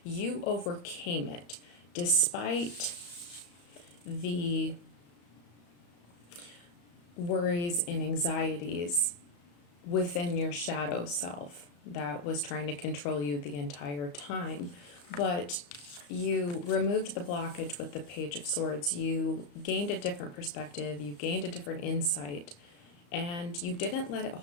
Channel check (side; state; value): right; late; 35 ms